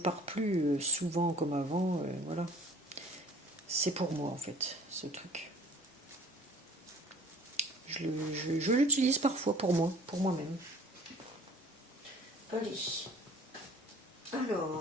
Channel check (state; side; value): normal; both; correlation 0.49